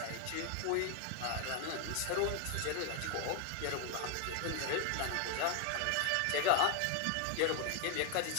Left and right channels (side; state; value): both; different; correlation 0.01